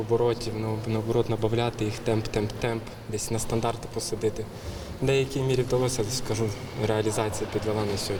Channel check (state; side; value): identical; both; correlation 1.00